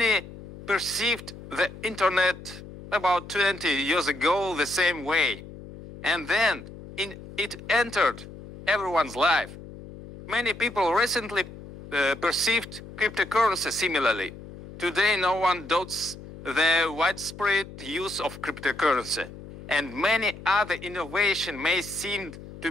perceived the internet about 20 years ago the same way, and then it entered everyone's life. Many people recently perceived cryptocurrency similarly. Today no one doubts the widespread use of cryptocurrency, and many other innovations may seem to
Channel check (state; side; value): noise; left; hum, 15 dB below the sound